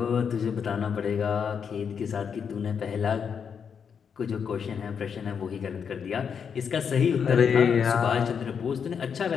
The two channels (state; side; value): quieter; right; 6.9 dB